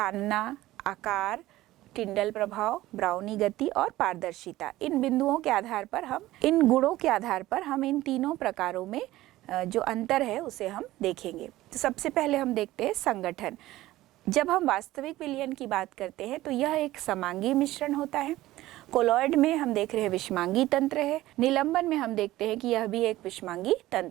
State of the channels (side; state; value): left; quieter; 16.4 dB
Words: आकार, टिंडल प्रभाव, ब्राउनी गति और पारदर्शिता, इन बिंदुओं के आधार पर हम, इन गुणों के आधार पर हम इन तीनों प्रकारों में जो अंतर है उसे हम देखेंगे। तो सबसे पहले हम देखते हैं संगठन। जब हम वास्तविक विलयन की बात करते हैं तो यह एक समांगी मिश्रण होता है। कोलॉइड में हम देख रहे हैं विषमांगी तंत्र है। निलंबन में हम देखते हैं कि यह भी एक विषमांगी